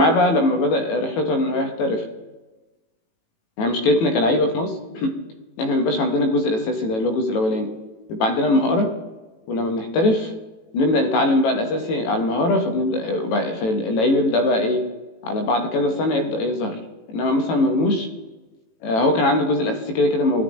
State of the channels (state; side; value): late; right; 18 ms